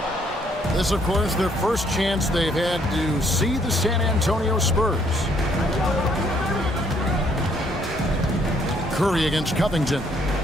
This, of course, their first chance they've had to see the San Antonio Spurs. Curry against Covington.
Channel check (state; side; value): normal; both; correlation 0.67